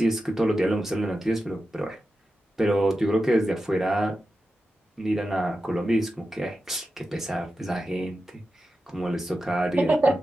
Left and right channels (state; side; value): normal; both; correlation 0.91